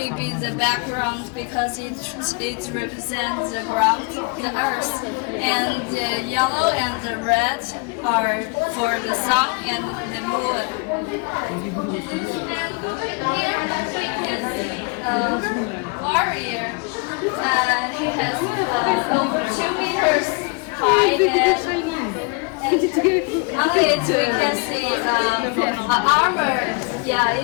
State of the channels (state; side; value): quieter; right; 30.3 dB